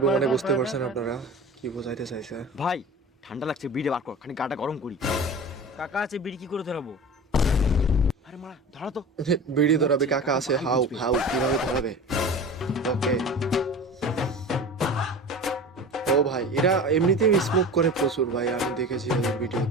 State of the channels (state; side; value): normal; both; correlation 0.35